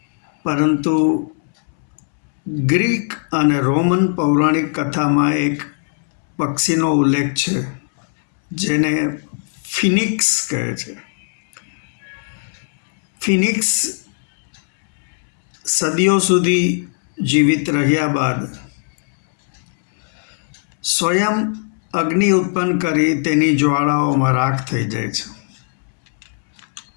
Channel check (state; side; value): silent; right; 66 dB below the other